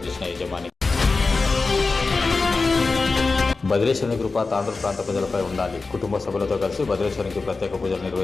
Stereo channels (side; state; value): right; quieter; 3.9 dB